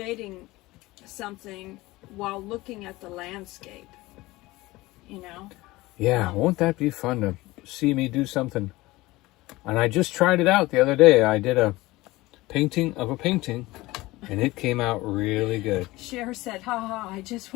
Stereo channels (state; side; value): quieter; right; 19.7 dB